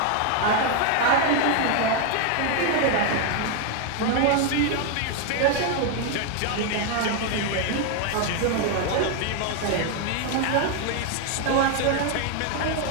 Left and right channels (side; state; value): both; different; correlation 0.01